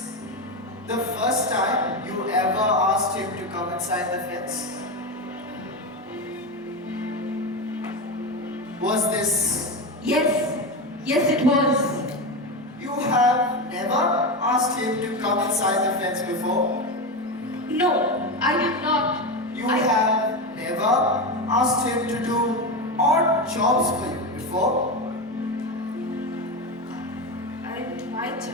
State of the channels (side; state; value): both; normal; correlation 0.17